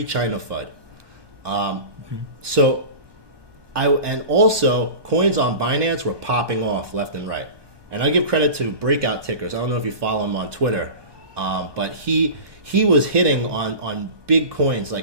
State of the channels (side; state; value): left; late; 1.2 ms